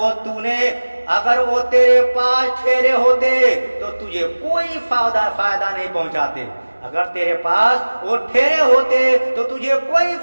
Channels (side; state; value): both; inverted; correlation -1.00